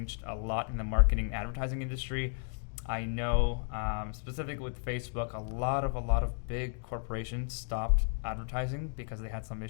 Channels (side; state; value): right; silent; 56 dB below the other